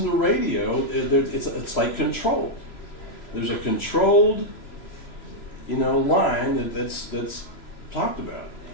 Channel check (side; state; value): right; late; 3.0 ms